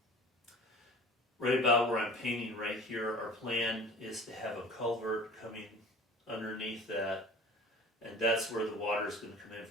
Right about where I'm painting right here, our plan is to have a culvert coming underneath that, and that's where the water is going to come in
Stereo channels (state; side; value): normal; both; correlation 0.42